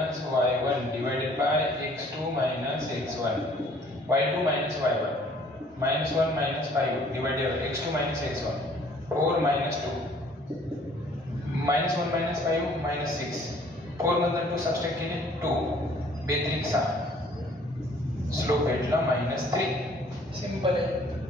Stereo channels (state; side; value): normal; both; correlation 0.57